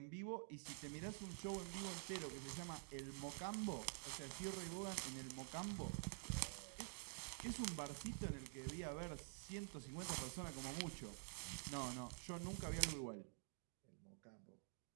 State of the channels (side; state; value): left; silent; digital silence